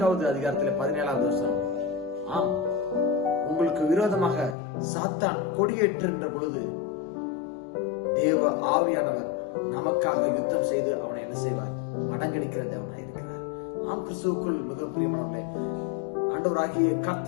அதிகாரத்திலே 17வது வசனம். உங்களுக்கு விரோதமாக சாத்தான் கொடியேற்றுகின்ற பொழுது தேவ ஆவியானவர் நமக்காக யுத்தம் செய்து அவனை என்ன செய்வார்? மடங்கடிக்கிற தேவனாய் இருக்கிறார். கிறிஸ்துவுக்குள் மிகவும் பிரியமானவர்களே, ஆண்டவராகிய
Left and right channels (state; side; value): drops out; right; at 4.5 s